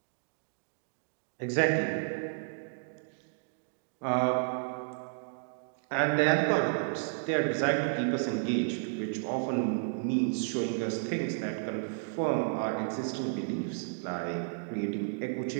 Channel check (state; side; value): silent; left; digital silence